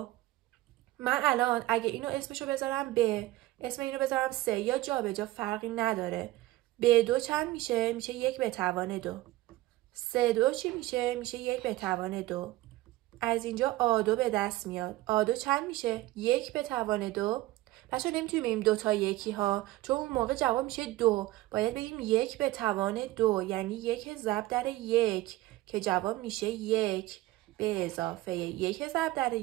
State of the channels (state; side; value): quieter; left; 17.7 dB